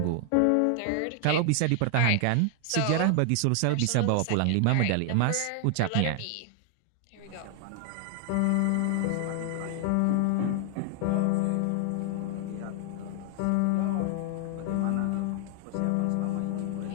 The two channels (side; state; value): both; different; correlation 0.00